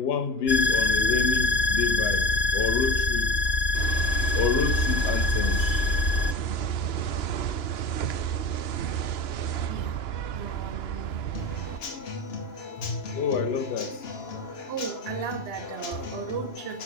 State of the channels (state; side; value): late; right; 2.9 ms